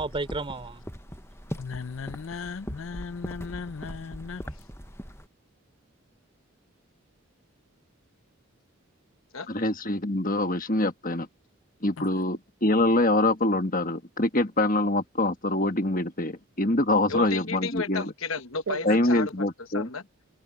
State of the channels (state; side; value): normal; both; correlation 0.33